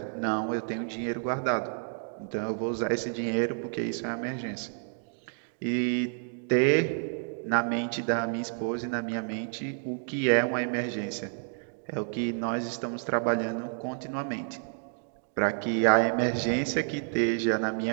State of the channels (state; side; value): silent; left; 58 dB below the other